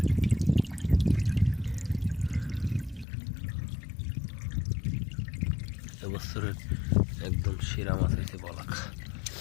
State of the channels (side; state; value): right; drops out; at 3.1 s